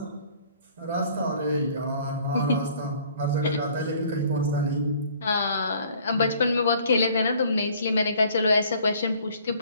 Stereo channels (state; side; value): inverted; both; correlation -0.55